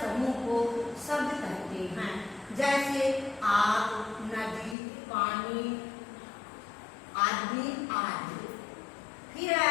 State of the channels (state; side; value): drops out; right; at 4.8 s